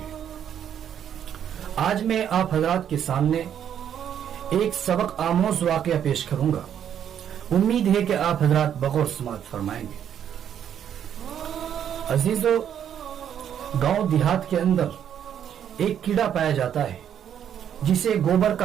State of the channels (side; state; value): left; quieter; 9.3 dB